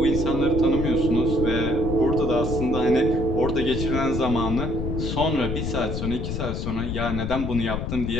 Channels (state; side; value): noise; left; rumble, 3 dB below the sound